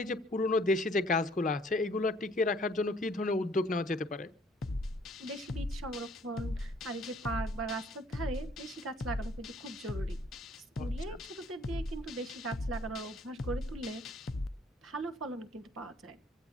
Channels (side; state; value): both; normal; correlation 0.60